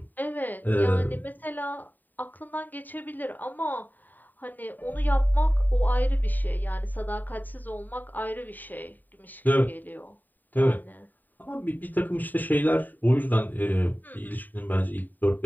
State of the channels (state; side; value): late; right; 0.088 ms